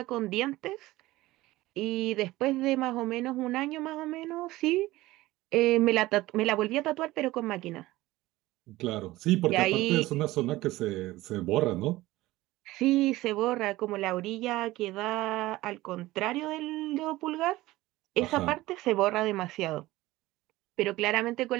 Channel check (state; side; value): quieter; left; 17.9 dB